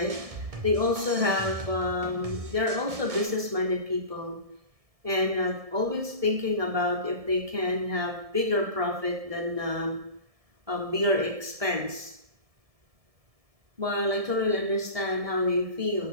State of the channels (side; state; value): left; late; 1.7 ms